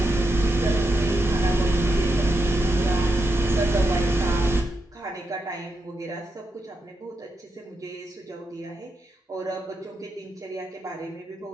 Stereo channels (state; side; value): normal; both; correlation 0.85